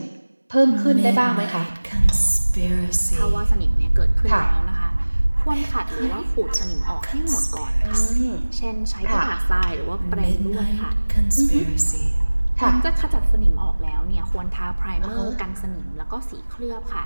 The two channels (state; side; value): inverted; both; correlation -1.00